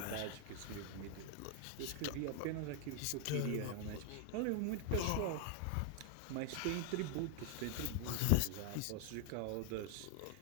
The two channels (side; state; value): both; different; correlation 0.00